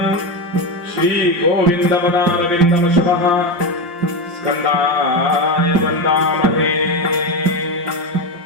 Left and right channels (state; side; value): late; left; 5.7 ms